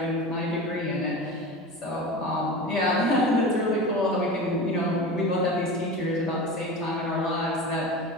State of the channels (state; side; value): normal; both; correlation 0.30